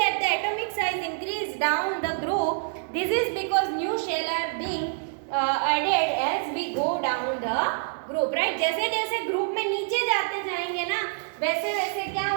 the atomic size increase down the group. This is because new shell are being added as we go down the group, right? जैसे जैसे group में नीचे जाते जाएंगे ना, वैसे वैसे क्या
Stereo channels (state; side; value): silent; left; digital silence